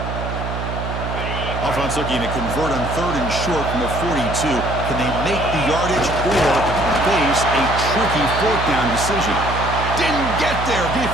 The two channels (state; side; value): noise; right; hum, 5 dB below the sound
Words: Offense looking to convert on third and short from the 42. Can they make the yardage or face a tricky fourth down decision? Didn't get there.